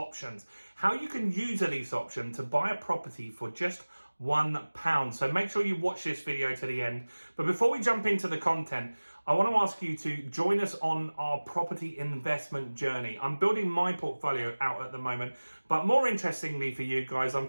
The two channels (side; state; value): both; inverted; correlation -1.00